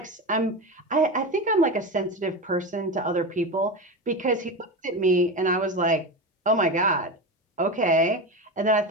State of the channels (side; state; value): both; normal; correlation 0.22